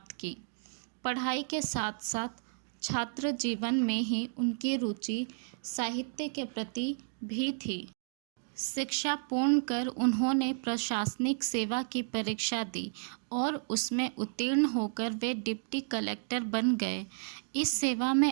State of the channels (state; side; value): silent; left; digital silence